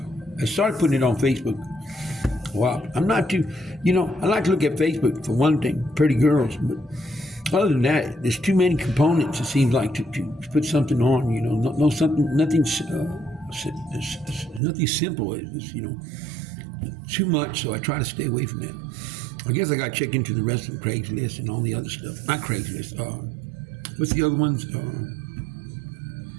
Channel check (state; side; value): drops out; left; at 14.6 s